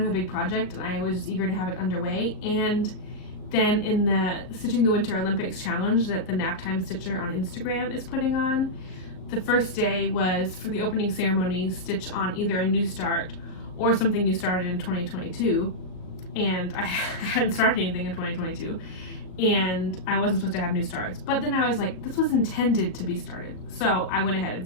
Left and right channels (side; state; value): right; late; 38 ms